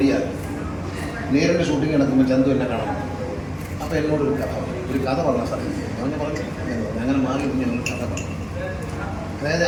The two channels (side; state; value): both; identical; correlation 1.00